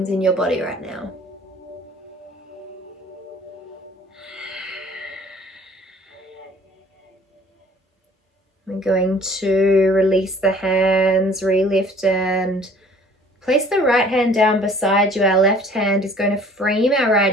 in your body right now. We're going to release the hands, relift, and place the right hand down beside you. Our left hand is going to frame our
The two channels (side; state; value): both; normal; correlation 0.52